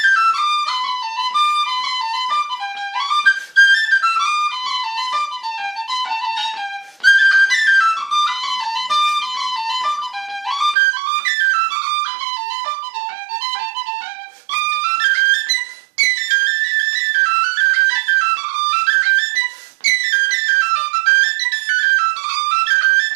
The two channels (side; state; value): left; drops out; at 10.8 s